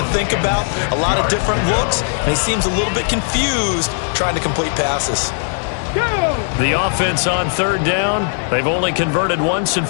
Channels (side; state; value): right; silent; digital silence